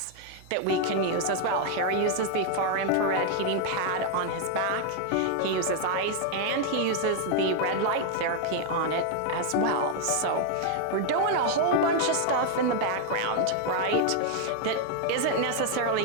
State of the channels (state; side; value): different; both; correlation 0.00